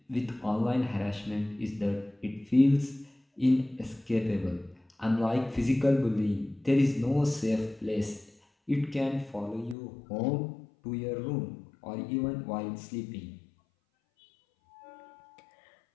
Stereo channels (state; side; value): drops out; right; at 9.8 s